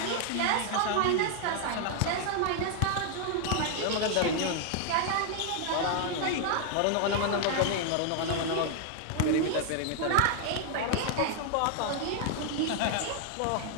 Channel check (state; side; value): different; both; correlation 0.00